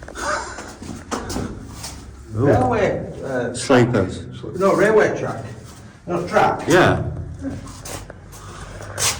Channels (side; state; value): both; identical; correlation 1.00